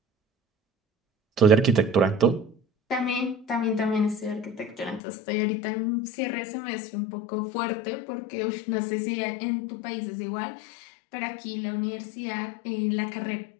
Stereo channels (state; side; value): drops out; right; at 5.0 s